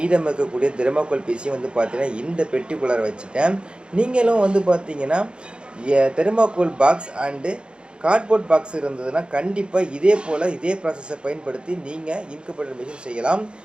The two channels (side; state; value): left; late; 0.054 ms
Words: இருக்கக்கூடிய தெர்மாக்கோல் பீஸையும் வந்து பார்த்தீங்கன்னா, இந்த பெட்டிக்குள்ளார வச்சுட்டேன். நீங்களும் வந்து பார்த்தீங்கன்னா, thermocol box and cardboard box இருந்ததுன்னா, கண்டிப்பா இதே போல இதே ப்ராசஸ பயன்படுத்தி நீங்க இன்குபேட்டர் மெஷின் செய்யலாம்.